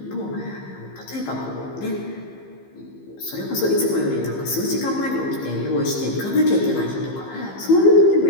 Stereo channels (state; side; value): late; right; 15 ms